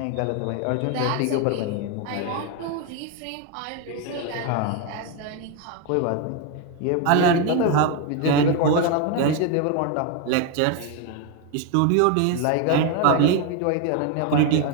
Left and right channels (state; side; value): different; both; correlation 0.02